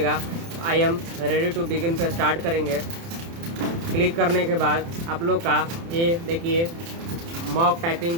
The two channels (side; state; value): left; late; 30 ms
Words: I am ready to begin पे स्टार्ट करेंगे। क्लिक करने के बाद आप लोग का ये देखिए मॉक